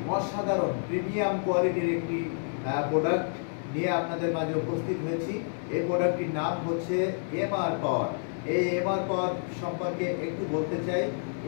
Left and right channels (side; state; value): right; silent; digital silence